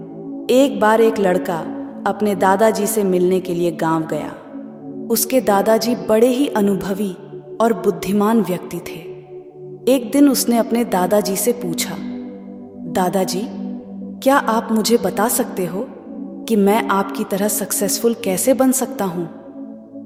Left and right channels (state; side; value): identical; both; correlation 1.00